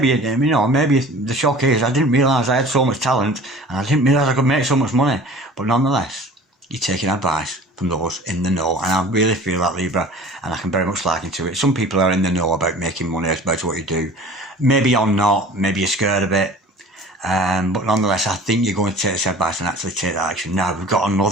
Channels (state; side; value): normal; both; correlation 0.44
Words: you know, maybe the shock is I didn't realise I had so much talent and I didn't realise I could make so much money. But nonetheless, you're taking advice from those in the know, and I really feel that, Libra, and I can very much liken to it. Some people are in the know about making money, about what you do. Maybe you're not, maybe you're scared of it, but nonetheless, I think you're going to take this advice and actually take that action. Now, we've got